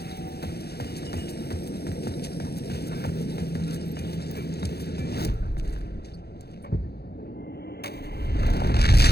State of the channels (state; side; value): late; right; 0.47 ms